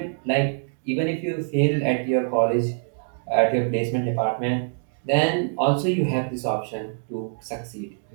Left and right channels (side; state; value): left; silent; digital silence